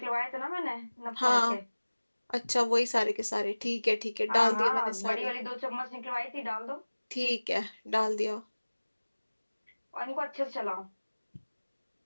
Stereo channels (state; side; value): inverted; both; correlation -1.00